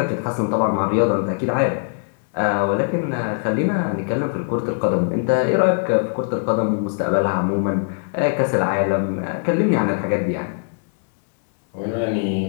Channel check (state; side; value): silent; right; digital silence